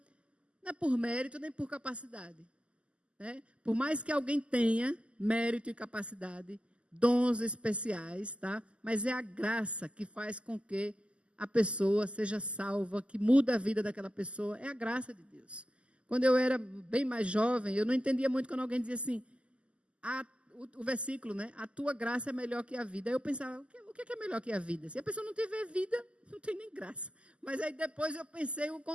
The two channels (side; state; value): left; late; 0.054 ms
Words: não é por mérito nem por capacidade. Né? Por mais que alguém tenha mérito e capacidade, dons especiais, tá? Mas é a graça que faz com que a pessoa seja salva, que muda a vida daquela pessoa, é a graça de Deus. Quando eu era bem mais jovem, eu não entendia muito quando alguém dizia assim, o versículo, né? A tua graça é melhor que a vida. Aí eu pensava, o que é melhor que a vida? Se a pessoa não tiver vida, não tem nem graça. Mas aí depois eu pensei o